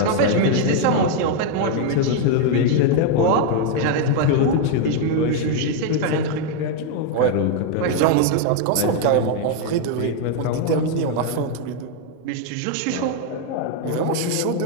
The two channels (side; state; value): both; different; correlation 0.01